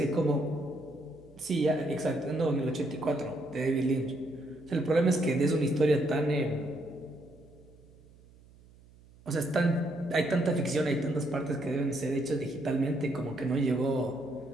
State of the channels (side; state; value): right; noise; hum, 25 dB below the sound